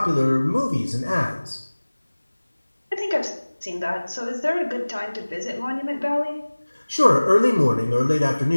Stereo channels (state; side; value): inverted; both; correlation -1.00